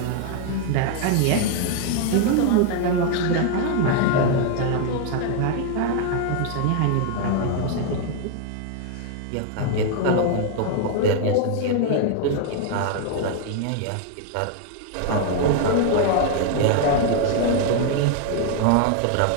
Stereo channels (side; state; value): both; different; correlation 0.00